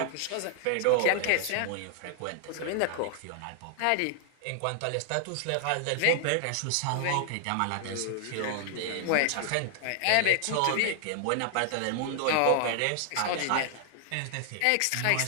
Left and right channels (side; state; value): both; different; correlation 0.00